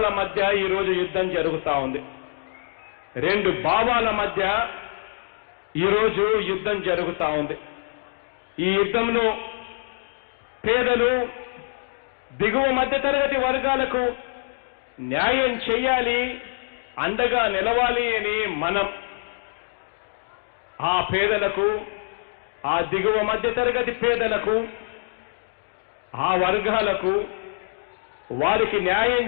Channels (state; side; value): silent; right; digital silence